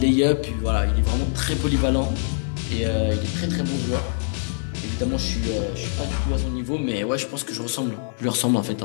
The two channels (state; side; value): silent; right; 62 dB below the other